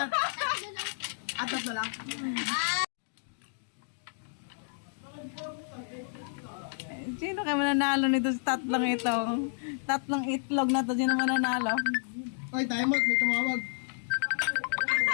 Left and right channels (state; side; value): silent; right; digital silence